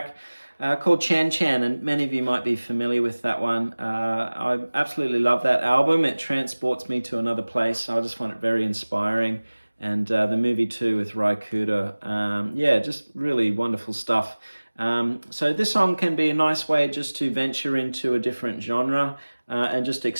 called Chan Chan, and many of you might be familiar with that one. I absolutely love that album. It transports me to another place. I just find it very inspiring. And the movie too with Rai Kuda. Yeah, just really wonderful stuff. So this song can be a nice way just to venture into a different genre and just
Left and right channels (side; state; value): both; inverted; correlation -1.00